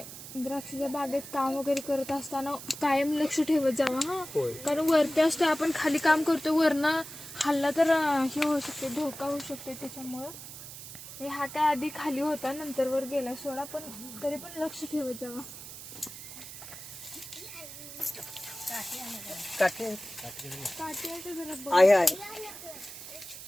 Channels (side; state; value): right; noise; hiss, 12 dB below the sound